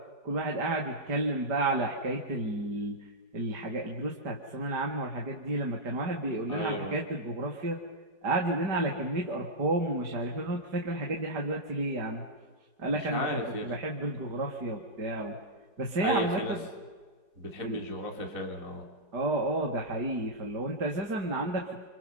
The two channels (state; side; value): late; left; 4.7 ms